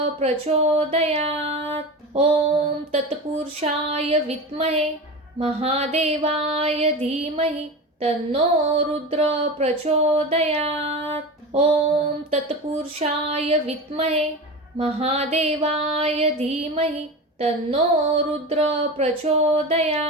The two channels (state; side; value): normal; both; correlation 0.27